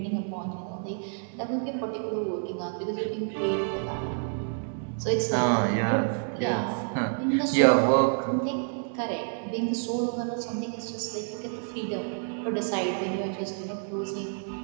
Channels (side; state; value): left; silent; 59 dB below the other